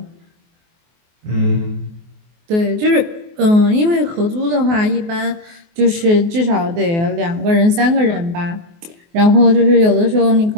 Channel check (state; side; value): late; left; 24 ms